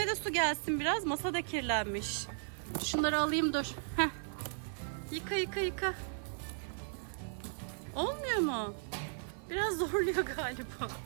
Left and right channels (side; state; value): left; silent; digital silence